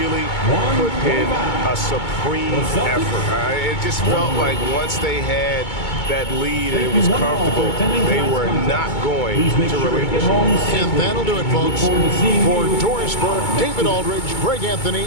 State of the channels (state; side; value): late; right; 2.2 ms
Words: put in a supreme effort. It just felt like once they had that lead and it was comfortable, they were not going to relinquish. And that'll do it, folks. For Doris Burke, David Aldridge, Greg Anthony,